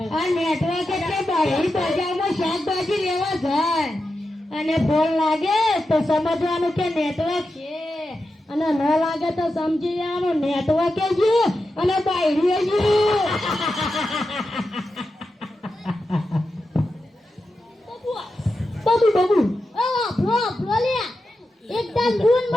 આ નેટવર્ક એટલે બહાર બજારમાં શાકભાજી લેવા જાય અને ફોન લાગે તો સમજવાનું કે નેટવર્ક છે અને ન લાગે તો સમજી જવાનું નેટવર્ક જ અને બાયડીએ જ. બાબુ આપણો લે એકદમ ગુણ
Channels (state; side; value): normal; both; correlation 0.90